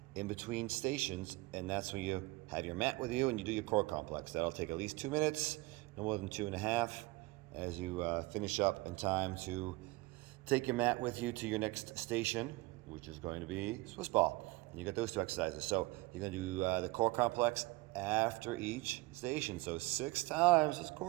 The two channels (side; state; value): left; quieter; 22.1 dB